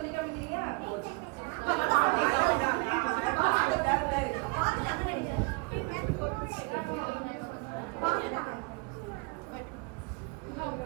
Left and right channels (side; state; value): left; quieter; 28.9 dB